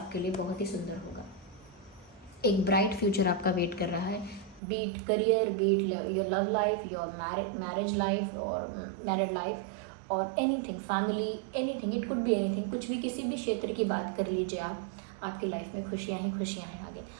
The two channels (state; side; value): drops out; left; at 4.6 s